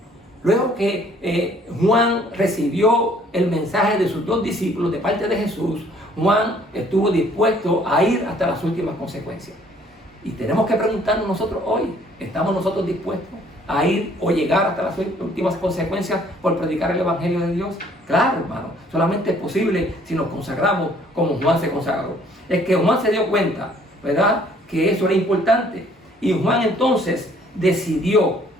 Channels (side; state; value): both; normal; correlation 0.60